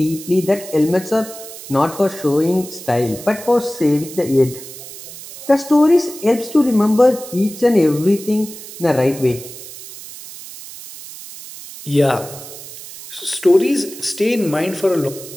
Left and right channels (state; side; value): noise; right; hiss, 14 dB below the sound